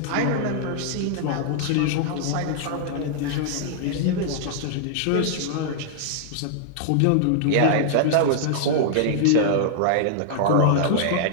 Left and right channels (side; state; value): both; different; correlation -0.01